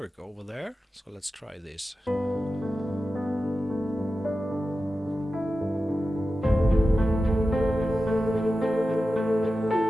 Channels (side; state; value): both; normal; correlation 0.93